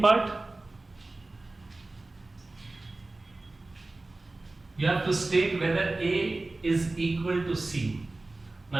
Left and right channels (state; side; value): quieter; left; 3.1 dB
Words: part, you have to state whether A is equal to C.